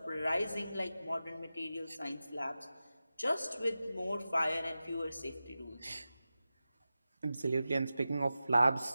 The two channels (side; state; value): both; inverted; correlation -0.94